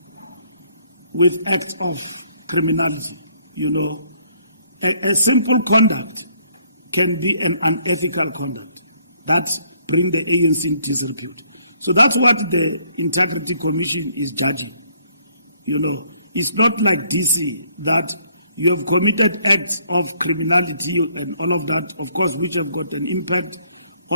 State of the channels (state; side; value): inverted; both; correlation -0.67